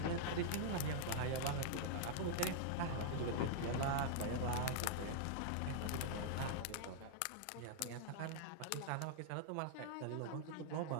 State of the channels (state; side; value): different; both; correlation -0.01